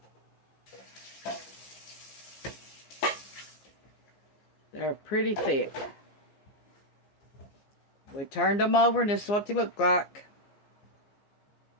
They're pretty thick. We turned them over and this is what they look like.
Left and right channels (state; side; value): late; right; 15 ms